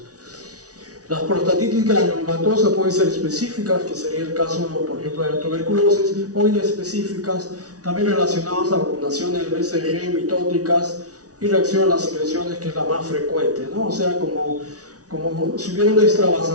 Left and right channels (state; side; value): late; left; 0.68 ms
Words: Las prostatitis granulomatosas pueden ser específicas, que sería el caso, por ejemplo, de la tuberculosis, o inespecíficas, también relacionadas a vacunaciones de BCG, mitóticas y reacción a las secreciones, que es la más frecuente, ¿no? O sea, como si hubiera una